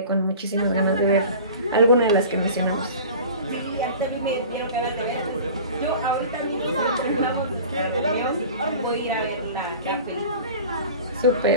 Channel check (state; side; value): inverted; both; correlation -0.40